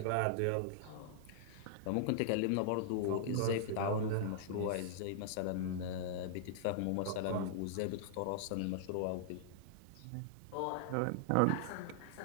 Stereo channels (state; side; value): different; both; correlation -0.01